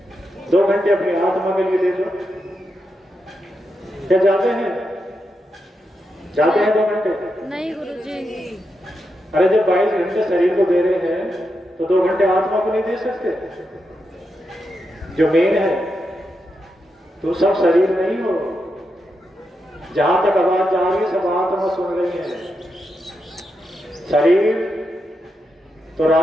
2 घंटे अपनी आत्मा के लिए दे दो। क्या जाते हैं 2 घंटे? नहीं गुरुजी। अरे जब 22 घंटे शरीर को दे रहे हैं तो 2 घंटे आत्मा को नहीं दे सकते? जो मेन है, तो सब शरीर नहीं हो। जहां तक आवाज जा रही है सब आत्मा सुन रही है। शरीर तो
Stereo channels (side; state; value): both; normal; correlation 0.85